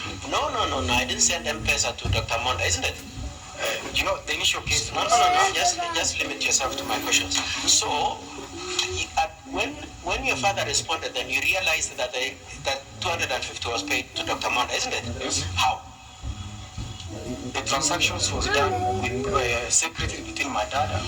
no, I didn't send M-Pesa to Dr. Monda, isn't it? The initial case. No. Just limit yourself to my questions. So, when your father responded, then you realized that that 250 was paid to Dr. Monda, isn't it? Yes. How? The transactions was done with secretly between my dad and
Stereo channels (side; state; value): both; identical; correlation 1.00